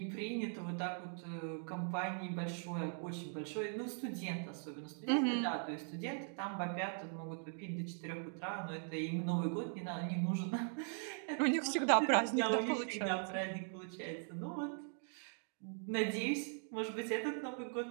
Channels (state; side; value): silent; left; 51 dB below the other